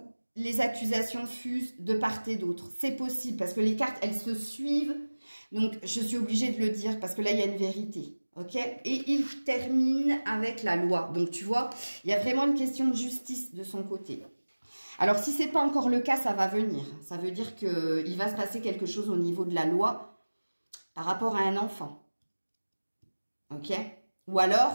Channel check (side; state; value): both; inverted; correlation -1.00